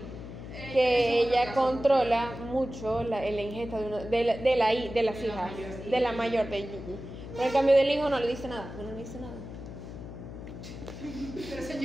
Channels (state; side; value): noise; left; hum, 11 dB below the sound